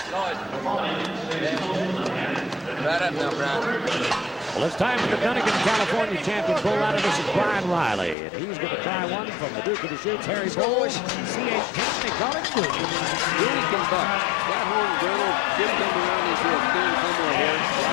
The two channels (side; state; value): right; drops out; at 8.2 s